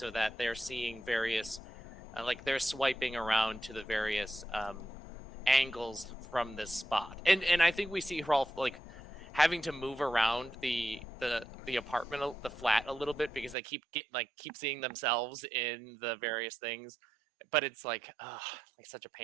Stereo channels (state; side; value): drops out; left; at 13.6 s